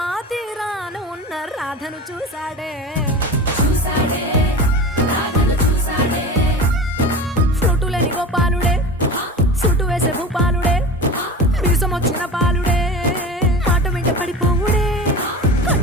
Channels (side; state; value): both; normal; correlation 0.31